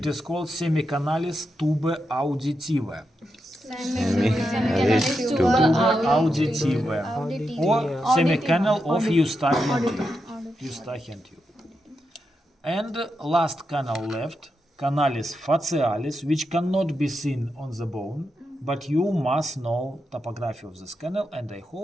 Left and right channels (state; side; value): normal; both; correlation 0.86